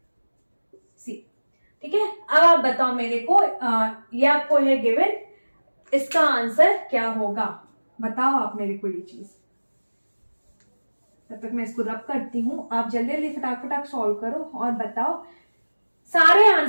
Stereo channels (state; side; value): inverted; both; correlation -1.00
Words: c, ठीक है। अब आप बताओ मेरे को, ये आपको है गिवन, इसका आंसर क्या होगा, बताओ आप मेरे को ये चीज। तब तक मैं इसको रब करती हूं, आप जल्दी जल्दी फटाक सॉल्व करो और बताओ, सारे